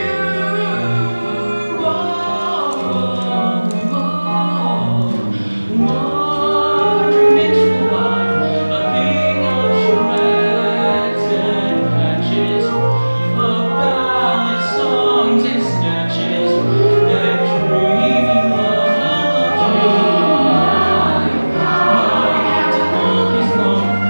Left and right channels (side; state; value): both; inverted; correlation -1.00